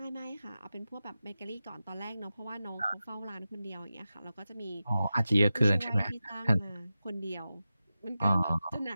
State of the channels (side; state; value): both; inverted; correlation -0.93